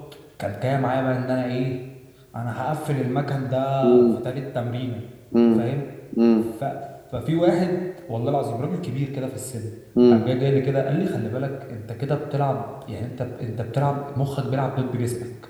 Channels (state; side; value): identical; both; correlation 1.00